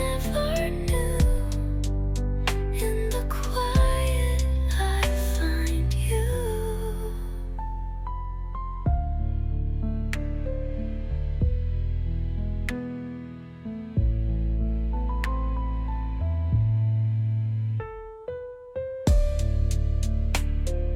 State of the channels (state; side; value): identical; both; correlation 1.00